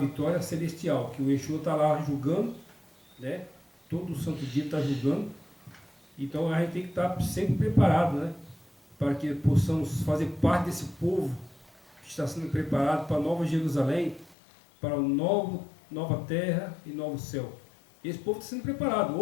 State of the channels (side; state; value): right; drops out; at 14.4 s